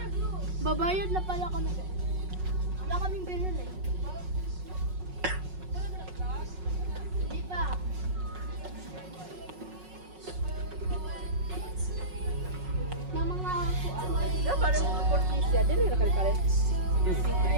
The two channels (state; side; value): late; left; 5.4 ms